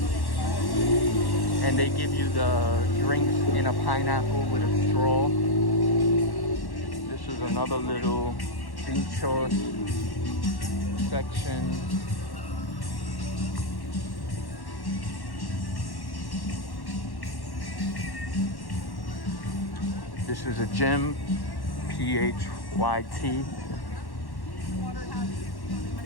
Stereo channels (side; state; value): right; late; 1.1 ms